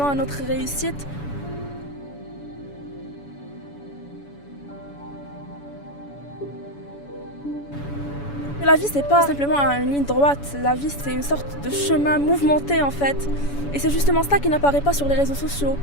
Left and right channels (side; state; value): right; late; 7.0 ms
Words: à notre réussite. Et la vie c'est pas simplement une ligne droite, la vie c'est une sorte de chemin mouvementé en fait. Et c'est justement ça qui n'apparaît pas sur les réseaux sociaux.